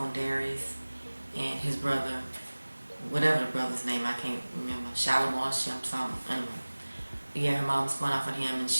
Darius and his brother, whatever the brother's name, I can't remember, Shalimar, something, anyway. Yeah, her mom's going off on him, and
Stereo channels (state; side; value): inverted; both; correlation -1.00